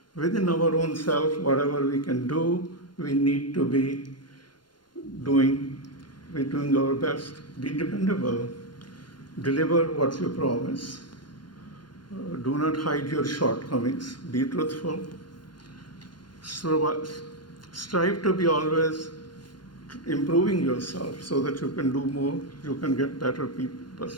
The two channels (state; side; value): late; right; 0.71 ms